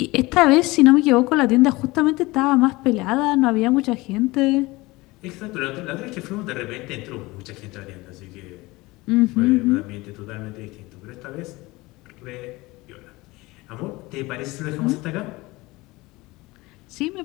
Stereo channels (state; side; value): quieter; right; 21.5 dB